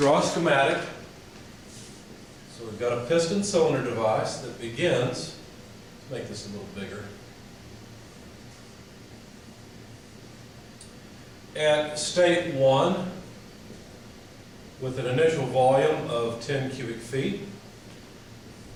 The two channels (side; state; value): both; identical; correlation 1.00